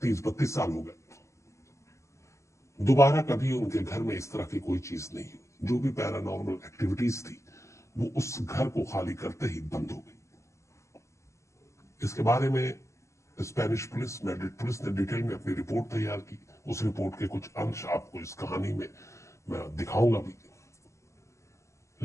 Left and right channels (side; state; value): right; late; 0.14 ms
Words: 30-32 साल हो गए। दोबारा कभी उनके घर में इस तरह की कोई चीज नहीं हुई। जो भी पैरानॉर्मल एक्टिविटीज थी वो उस घर को खाली करते ही बंद हो गई। इसके बारे में स्पेनिश पुलिस, मैड्रिड पुलिस ने डिटेल में अपनी रिपोर्ट तैयार की। उस रिपोर्ट के कुछ अंश आपको इस कहानी में मैं दिखाऊंगा भी।